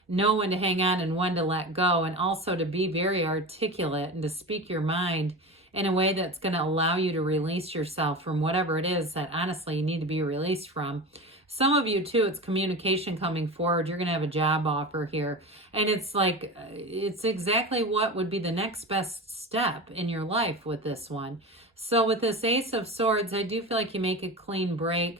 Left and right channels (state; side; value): normal; both; correlation 0.28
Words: know when to hang on and when to let go, and also to be very articulate and to speak your mind in a way that's going to allow you to release yourself from whatever it is that honestly you need to be released from. Some of you too, it's communication coming forward. You're going to have a job offer here. And it's like, it's exactly what would be the next best step in your life with this one. So with this Ace of Swords, I do feel like you make a clean